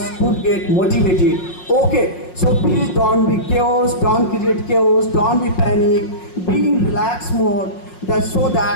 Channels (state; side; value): late; right; 5.5 ms